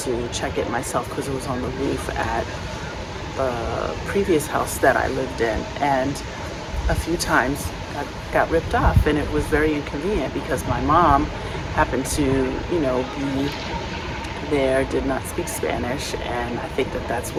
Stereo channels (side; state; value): both; identical; correlation 1.00